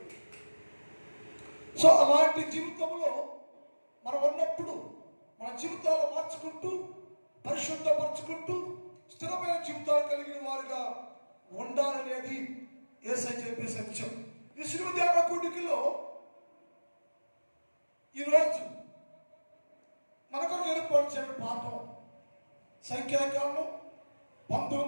సో అలాంటి జీవితంలో మనం ఉన్నప్పుడు మన జీవితాలు మార్చుకుంటూ, పరిశుద్ధపరచుకుంటూ, స్థిరమైన జీవితాలు కలిగిన వారుగా ఉండాలనేది యేసయ్య చెప్పే సత్యం. ఈ శిలువ ధ్యాన కూడికలో ఈరోజు మనకు ఏర్పరిచిన పాఠం సంఖ్యాకాండం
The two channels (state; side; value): inverted; both; correlation -1.00